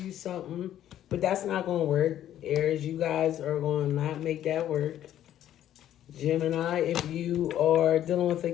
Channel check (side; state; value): right; quieter; 11.6 dB